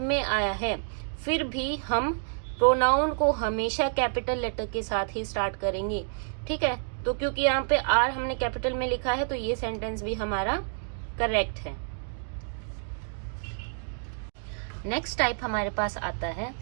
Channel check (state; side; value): silent; left; digital silence